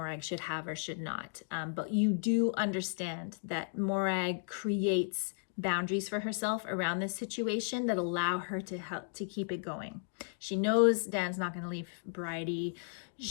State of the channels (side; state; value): right; silent; digital silence